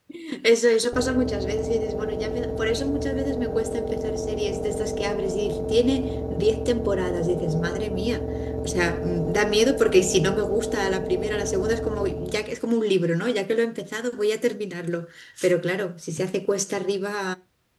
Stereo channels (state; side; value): identical; both; correlation 1.00